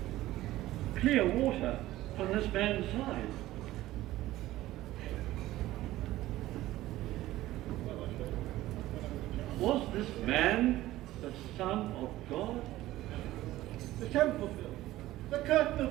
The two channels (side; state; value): left; quieter; 15.9 dB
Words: Clear water from this man's side. Was this man the Son of God? The temple, the curtain